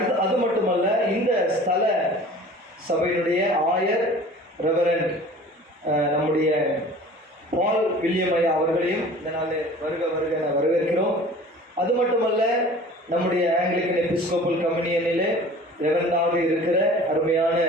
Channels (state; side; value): normal; both; correlation 0.44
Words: அது மட்டுமல்ல, இந்த ஸ்தல சபையினுடைய ஆயர் ரெவரண்ட் நம்முடைய பால் வில்லியம் ஐயா அவர்களையும் இந்த நாளில் வருக என வரவேற்கிறோம். அது மட்டுமல்ல, நம்முடைய ஆங்கிலிக்கன் எபிஸ்கோபல் கம்யூனியனிலே ரெவரண்டாக இருக்கிற அருமையான